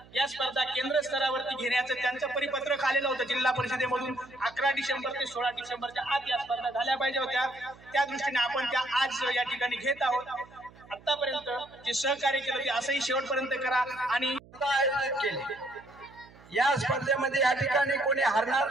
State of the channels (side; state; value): right; noise; hum, 24 dB below the sound